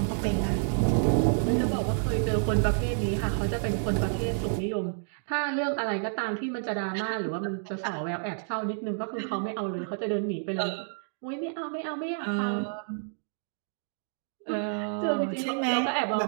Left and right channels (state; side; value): silent; left; digital silence